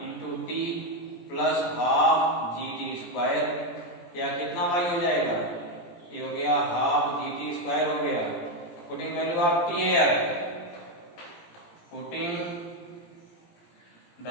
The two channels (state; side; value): late; right; 17 ms